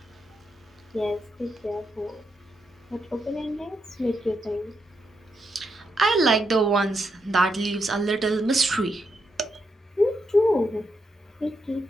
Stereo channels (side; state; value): both; normal; correlation 0.82